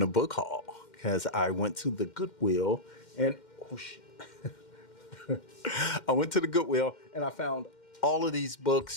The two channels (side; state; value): right; late; 2.1 ms